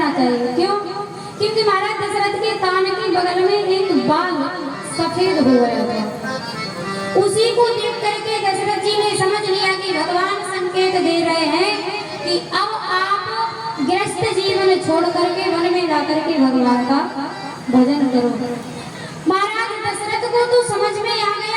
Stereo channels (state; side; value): identical; both; correlation 1.00